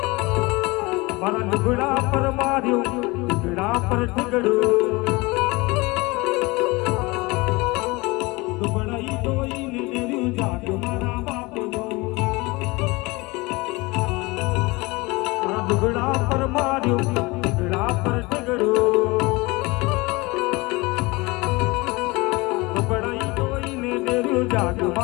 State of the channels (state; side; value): quieter; right; 23.9 dB